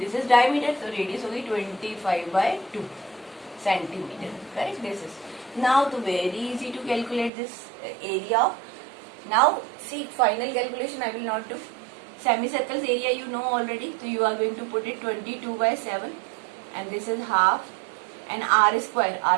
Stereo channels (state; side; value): drops out; left; at 7.3 s